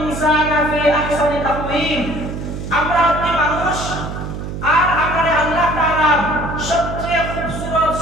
ফি আহসানি তাকওয়িম। আমরা হচ্ছি মানুষ, আর আমাদের আল্লাহ তাআলা সবচেয়ে খুবসুরত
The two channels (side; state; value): right; noise; hum, 7 dB below the sound